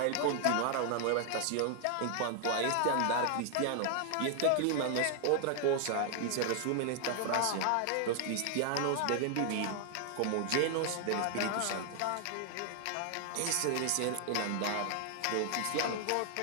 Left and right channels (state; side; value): different; both; correlation 0.00